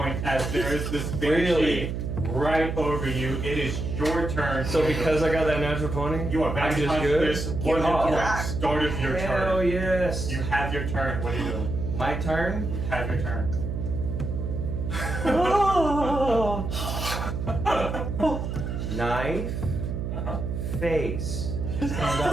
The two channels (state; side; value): noise; right; hum, 3 dB below the sound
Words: as there is this banshee Really? right over you. It is your turn. So because I got that natural 20, you are back I'm to just good. consciousness, 1 hit point, Yeah. start of your Hell turn. yes. You have your turn. What are you doing? My turn. You have your turn. Knife. Face. Stand